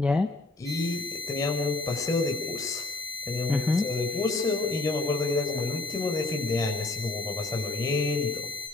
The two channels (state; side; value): quieter; right; 3.0 dB